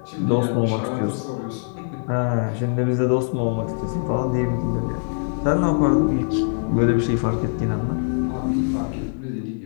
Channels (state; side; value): silent; right; 64 dB below the other